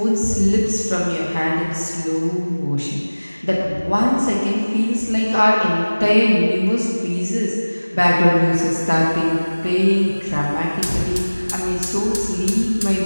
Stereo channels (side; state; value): both; inverted; correlation -1.00